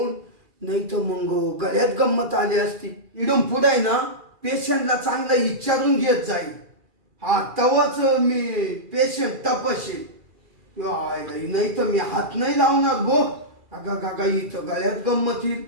नाही तर मग गळ्यात गंमत आली असती इडून पुढे ना पेशंटला चांगलं विचारून घेत जाईल हा तवाच मी पेशंट तपासेल नाही तर मी हात नाही लावणार भो अगा गागा इथं गळ्यात गंमत येईल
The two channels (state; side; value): late; left; 2.4 ms